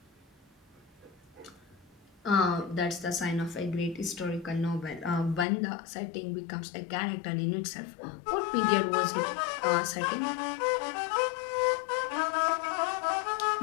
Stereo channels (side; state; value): right; drops out; at 5.5 s